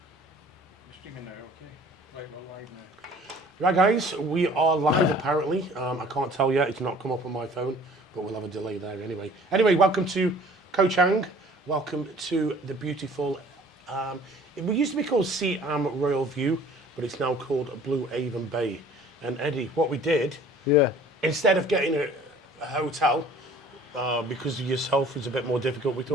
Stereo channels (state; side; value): normal; both; correlation 0.50